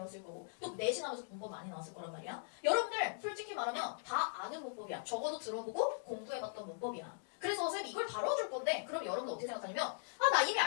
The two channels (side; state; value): right; silent; digital silence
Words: 거고 또 내신하면서 문법 많이 나왔을 거란 말이야. 여러분들 솔직히 말하면 다 아는 문법이야. 적어도 들어보고 공부해봤던 문법이야. 그래서 선생님이 이걸 다뤄줄 건데 그럼 여러분들 어떻게 생각하냐면 나 이미